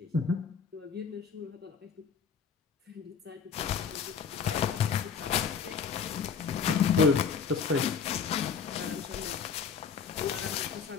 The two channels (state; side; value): quieter; right; 6.2 dB